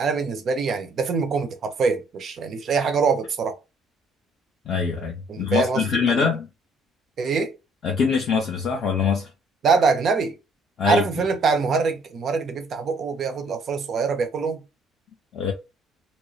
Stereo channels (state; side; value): normal; both; correlation 0.62